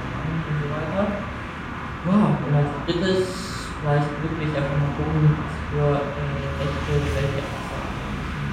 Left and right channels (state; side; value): identical; both; correlation 1.00